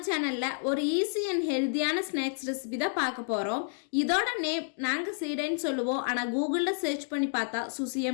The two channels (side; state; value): right; silent; digital silence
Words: சேனலில் ஒரு ஈஸி அண்ட் ஹெல்த்தியான ஸ்நாக்ஸ் ரெசிபி தான் பார்க்க போகிறோம். இதோட நேம் நாங்கள் சீடைன்னு சொல்லுவோம், ஆனால் கூகுளில் சர்ச் பண்ணி பார்த்தா